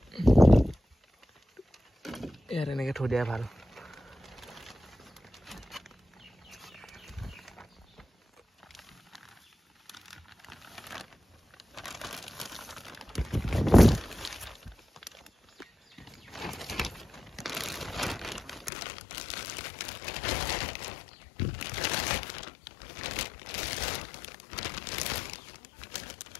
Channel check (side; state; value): right; drops out; at 18.7 s